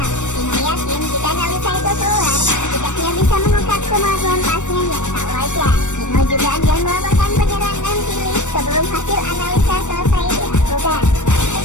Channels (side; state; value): right; late; 0.85 ms